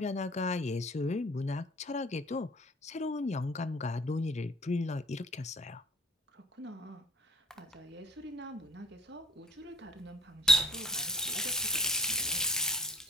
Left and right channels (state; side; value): normal; both; correlation 0.48